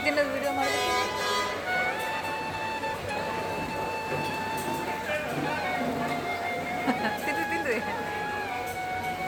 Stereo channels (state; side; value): identical; both; correlation 1.00